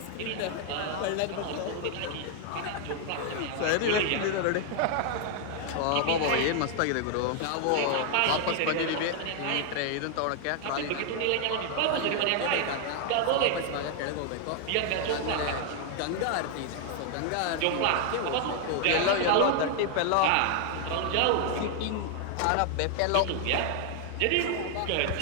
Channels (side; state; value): both; different; correlation 0.00